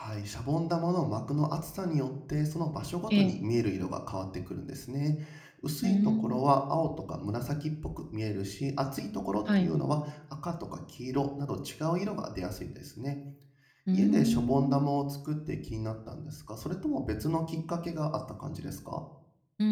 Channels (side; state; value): both; identical; correlation 1.00